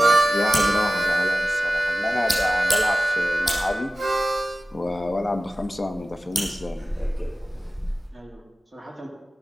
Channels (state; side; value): normal; both; correlation 0.96